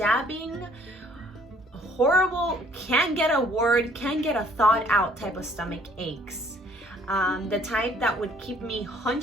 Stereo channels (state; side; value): normal; both; correlation 0.60